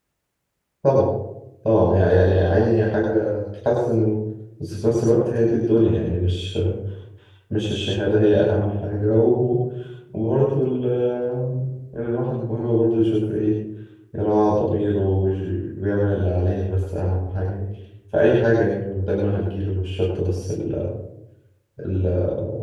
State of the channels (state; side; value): identical; both; correlation 1.00